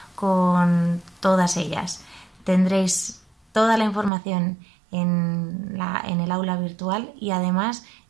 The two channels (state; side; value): drops out; left; at 4.1 s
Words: con todas ellas. Tendréis toda la información en el aula virtual y además